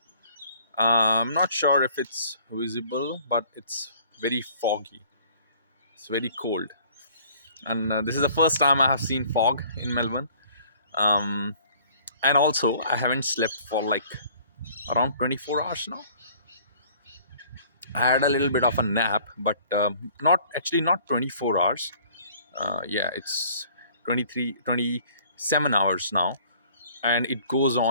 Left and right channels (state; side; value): inverted; both; correlation -0.54